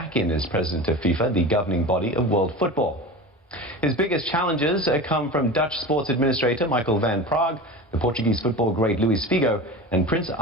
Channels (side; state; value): both; normal; correlation 0.31